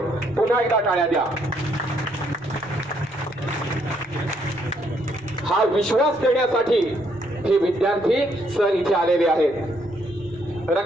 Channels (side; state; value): right; noise; rumble, 26 dB below the sound